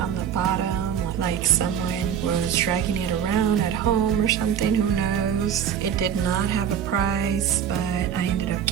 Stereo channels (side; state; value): left; quieter; 8.8 dB